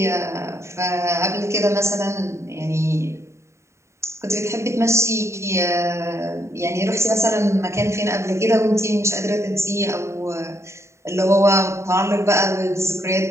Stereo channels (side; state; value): left; late; 0.14 ms